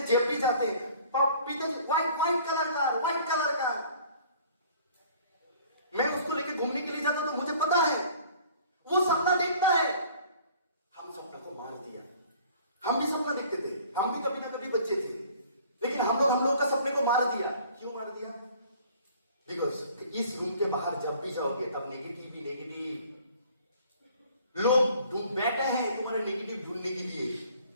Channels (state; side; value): inverted; both; correlation -0.52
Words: जब भी जाते हैं व्हाइट कलर का। मैं उसको लेके घूमने के लिए जाता तो मुझे पता है वो सपना देखता है। हम सपना को मार दिया। हम भी सपना देखते थे, हम भी कभी ना कभी बच्चे थे, लेकिन हम लोग का सपने को मार दिया। क्यों मार दिया? बिकॉज इस रूम के बाहर जब भी जाओगे तब नेगेटिव लोग बैठे हैं तुम्हारे नेगेटिव ढूंढने के लिए।